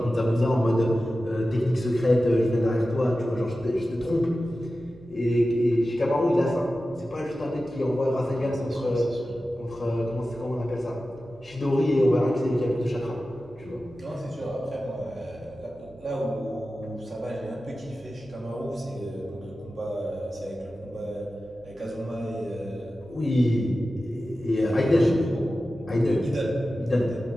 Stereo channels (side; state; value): right; noise; hum, 25 dB below the sound